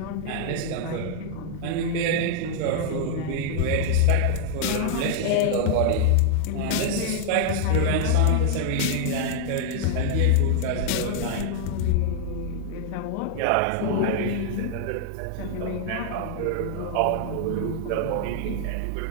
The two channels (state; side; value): different; both; correlation -0.01